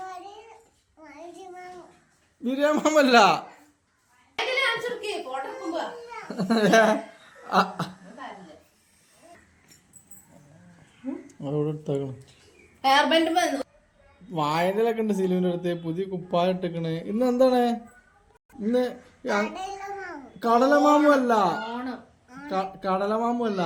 ബിരിയാമല്ല. വായനയിലൊക്കെ ഉണ്ട് സിലുവിന്റെ അടുത്ത്. പുതിയ കുപ്പായ ഇട്ടിക്കണ്. ഇന്ന് എന്താണ്? ഇന്ന് കടലമാമു അല്ല, കടലമാമു അല്ല,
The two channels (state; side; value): identical; both; correlation 1.00